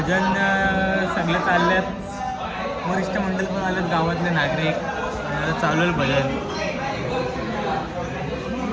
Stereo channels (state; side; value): identical; both; correlation 1.00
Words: सगळे चालल्यात. वरिष्ठ मंडळ पण आलेत, गावातले नागरिक. आणि आता चालू आहे भजन.